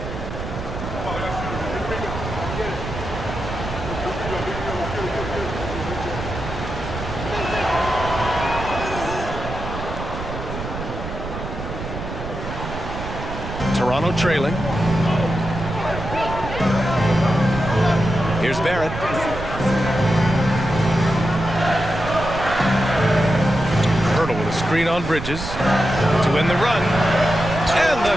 Toronto trailing. Here's Barrett. Pirtle with a screen on Bridges to win the run. And the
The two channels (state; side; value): noise; right; rumble, 8 dB below the sound